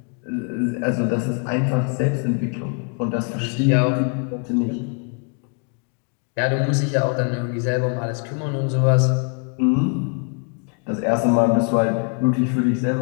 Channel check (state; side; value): quieter; right; 37.8 dB